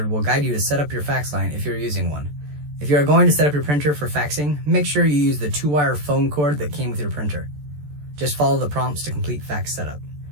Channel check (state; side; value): late; left; 14 ms